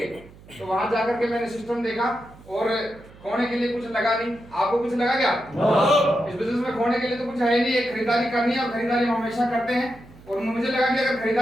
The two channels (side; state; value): right; noise; hum, 22 dB below the sound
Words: तो वहां जाकर के मैंने सिस्टम देखा और खोने के लिए कुछ लगा नहीं। आपको कुछ लगा क्या? इस बिजनेस में खोने के लिए तो कुछ है नहीं। एक खरीदारी करनी है और खरीदारी हम हमेशा करते हैं। और मुझे लगा कि अगर